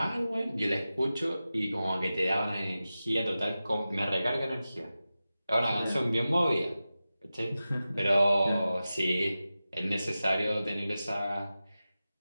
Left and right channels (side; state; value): both; inverted; correlation -0.94